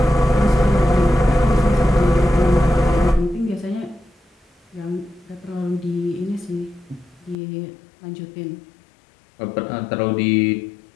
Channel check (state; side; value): drops out; right; at 7.4 s